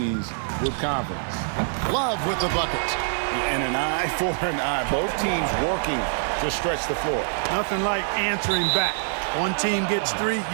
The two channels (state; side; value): silent; left; 62 dB below the other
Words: with confidence. Love with the bucket. And an eye for an eye. Both teams working to stretch the floor. Nothing like answering back. One team gets three,